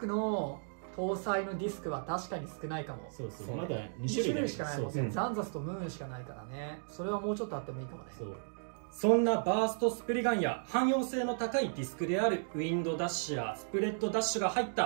の搭載のディスクは確かに少ないかも。そうそう、まだ2種類しかないもんね。ザンザスとムーンしかないからね。それはもうちょっとあってもいいかもね。そんなバーストスプリガンや汎用性の高いディスクであるウィンドダッシュやスプレッドダッシュが入っ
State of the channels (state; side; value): silent; left; digital silence